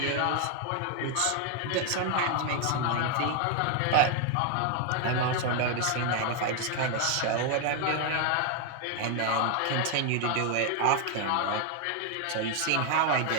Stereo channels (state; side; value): different; both; correlation 0.00